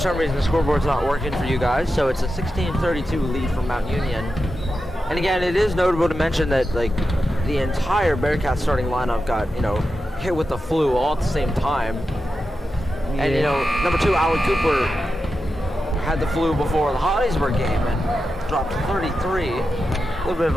reason the scoreboard's not working for you guys, so it's a 16-32 lead for Mount Union. And again, it is notable to mention that like the entire Bearcats starting lineup got, you know, hit with the flu all at the same time. And you know, number 2, Alan Cooper, had the flu before the Hollidaysburg game and dropped 33. A little bit of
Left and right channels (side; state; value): both; normal; correlation 0.90